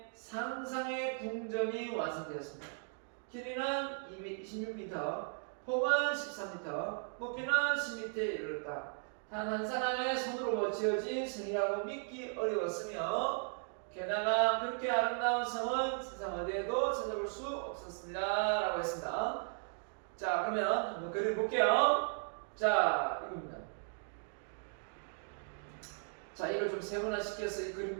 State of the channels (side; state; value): left; silent; 53 dB below the other